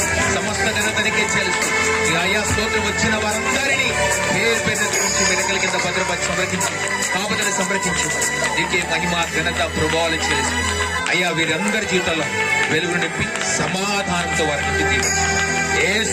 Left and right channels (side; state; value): both; identical; correlation 1.00